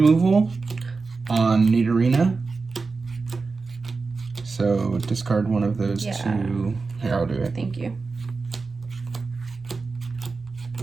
on Nidorina. So discard one of those 2. Here, I'll do it. Thank you.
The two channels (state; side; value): quieter; left; 4.2 dB